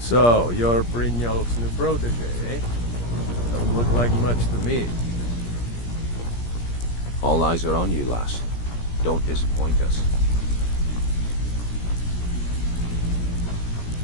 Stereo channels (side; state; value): right; late; 17 ms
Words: you're Brynjolf's new protege, eh? Don't look like much to me. All eyes are on you, lass. Don't disappoint us.